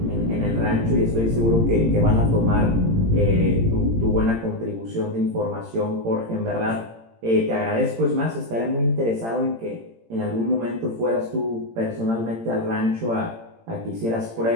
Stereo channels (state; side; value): late; left; 18 ms